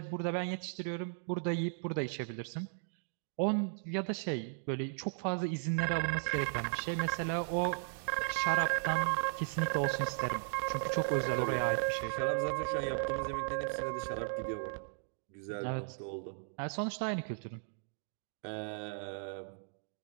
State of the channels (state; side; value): silent; left; digital silence